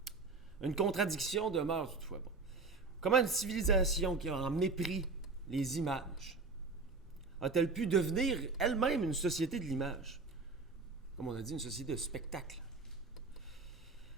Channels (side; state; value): left; quieter; 4.0 dB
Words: Une contradiction demeure toutefois. Comment une civilisation qui a en mépris les images a-t-elle pu devenir elle-même une société de l'image? Comme on a dit, une société de spectacle.